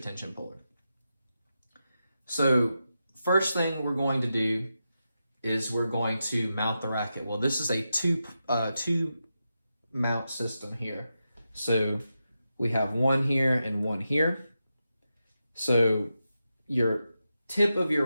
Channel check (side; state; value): both; inverted; correlation -0.89